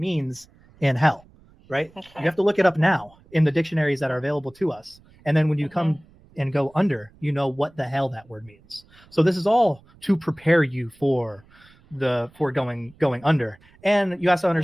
in hell, right? Okay. You have to look it up now in the dictionaries that are available to us. And then when you come and go under, you know what the hell that word means. So this is all to prepare you for going under. And you have to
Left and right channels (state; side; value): noise; right; rumble, 28 dB below the sound